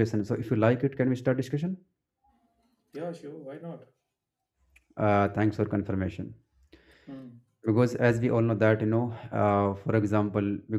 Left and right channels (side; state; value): both; identical; correlation 1.00